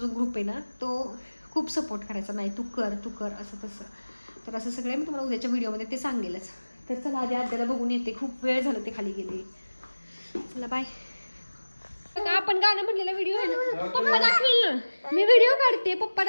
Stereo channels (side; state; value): both; inverted; correlation -1.00